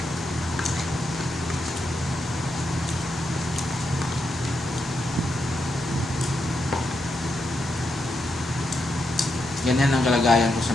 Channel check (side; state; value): both; normal; correlation 0.83